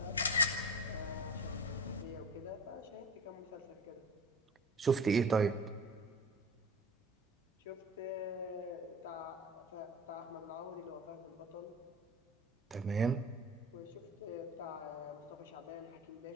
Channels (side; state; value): both; normal; correlation 0.33